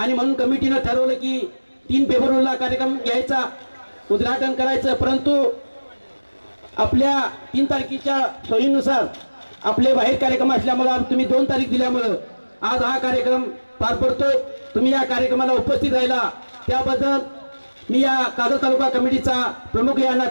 म्हणून कमिटीनं ठरवलं की 3 फेब्रुवारीला कार्यक्रम घ्यायचा, उद्घाटन करायचं. परंतु आपल्या 3 तारखेच्या सोयीनुसार आपले बाहेर कार्यक्रम असल्यामुळे तुम्ही 2 तारीख दिल्यामुळं आज हा कार्यक्रम पार पडतोय. तुम्ही या कार्यक्रमाला उपस्थित राहिला त्याबद्दल मी या कागल तालुका कमिटीचा प्रमुख या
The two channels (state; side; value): inverted; both; correlation -1.00